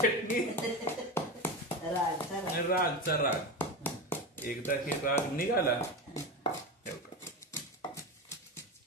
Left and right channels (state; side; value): normal; both; correlation 0.22